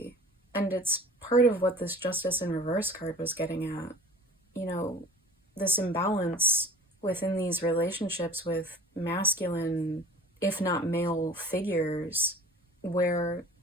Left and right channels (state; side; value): normal; both; correlation 0.43